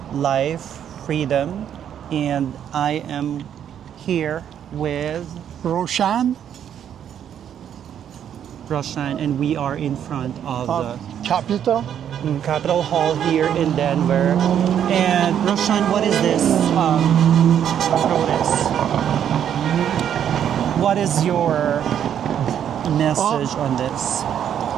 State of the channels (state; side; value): quieter; left; 9.4 dB